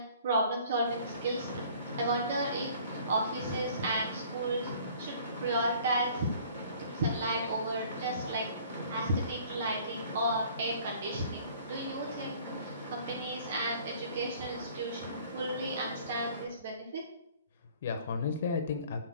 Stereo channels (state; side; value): inverted; both; correlation -0.52